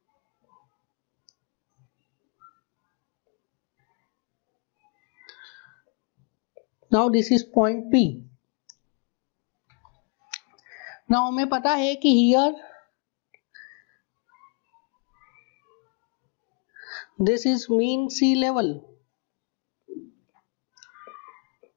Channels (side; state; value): right; quieter; 37.9 dB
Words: now this is point P। Now हमें पता है कि here this is mean sea level.